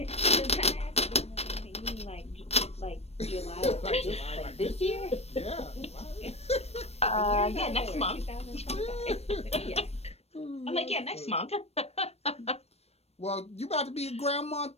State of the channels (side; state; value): right; late; 0.30 ms